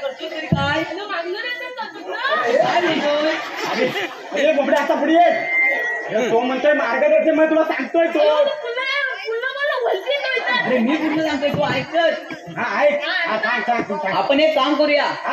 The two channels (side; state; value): both; identical; correlation 1.00